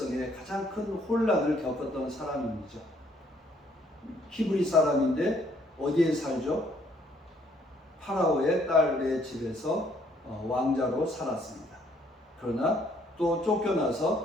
가장 큰 혼란을 겪었던 사람이죠. 히브리 사람인데 어디에 살죠? 파라오의 딸의 집에서 왕자로 살았습니다. 그러나 또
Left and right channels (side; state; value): both; normal; correlation 0.65